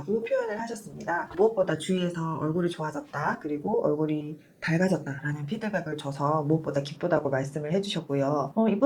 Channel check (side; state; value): both; identical; correlation 1.00